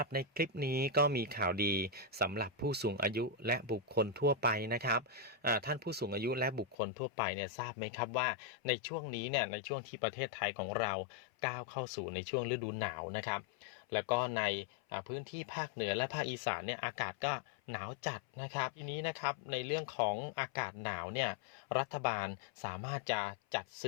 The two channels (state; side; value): drops out; right; at 6.8 s